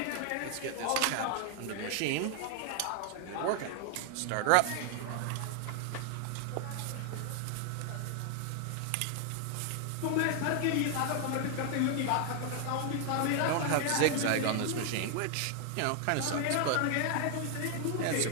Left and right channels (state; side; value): different; both; correlation 0.00